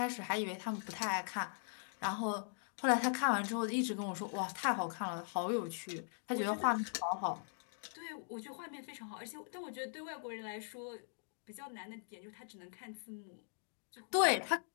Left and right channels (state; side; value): silent; right; digital silence